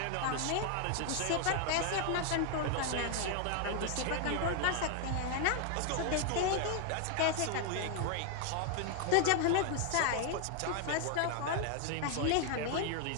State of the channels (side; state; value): both; different; correlation 0.00